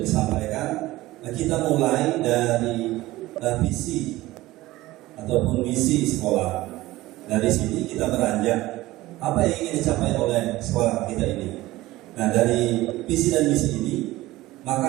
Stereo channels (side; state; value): left; quieter; 17.8 dB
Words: disampaikan, kita mulai dari visi ataupun misi sekolah. Dari sini kita beranjak apa yang ingin dicapai oleh sekolah kita ini. Nah, dari visi dan misi ini